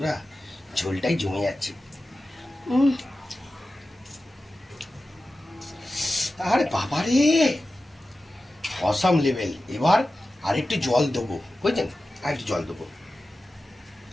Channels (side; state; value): both; normal; correlation 0.94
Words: ঝোলটাই জমে যাচ্ছে। আরে বাবা রে, অসাম লেভেল। এবার আর একটু জল দেবো, বুঝছেন? আর একটু জল দেবো,